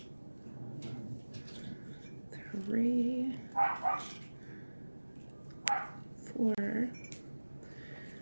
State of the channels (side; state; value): both; inverted; correlation -1.00